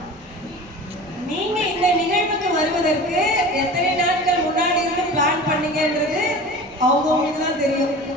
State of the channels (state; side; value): normal; both; correlation 0.36